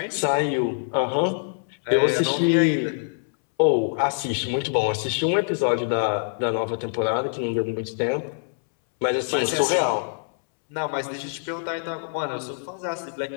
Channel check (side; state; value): right; silent; 62 dB below the other